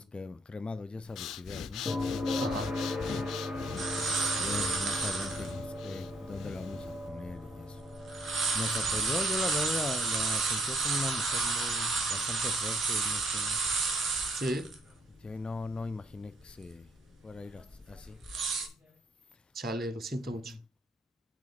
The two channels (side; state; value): both; normal; correlation 0.67